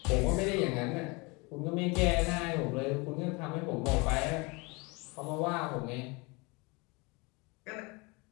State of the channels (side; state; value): right; quieter; 27.5 dB